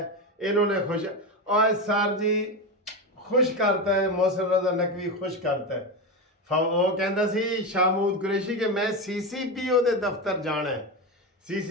इन्होंने खुश। और सर जी खुश करता है, मोहसिन रजा नकवी खुश करता है। वो कहता सी शामूद कुरैशी कि मैं CCPO ਦੇ ਦਫ਼ਤਰ ਜਾਣਾ ਹੈ।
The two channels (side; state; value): both; normal; correlation 0.16